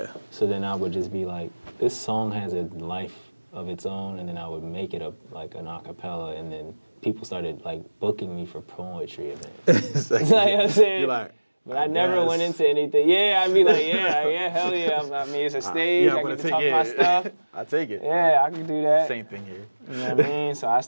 So then I would just be like, this song has a life of its own, and then I would make it like an acapella, and then people started like booking me for poetry events. Like, You know what I'm saying? you're like, But I never went into anything. Yeah, I'd be like, yeah, hell yeah. I mean, it's a stage. I get to talk my stuff. I take it. Yeah, I can do that. Same thing here. You know what I mean? So I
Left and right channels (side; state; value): both; inverted; correlation -1.00